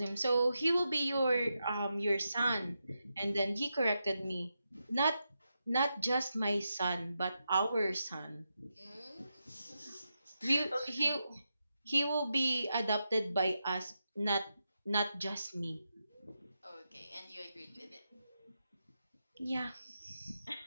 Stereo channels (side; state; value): both; inverted; correlation -0.87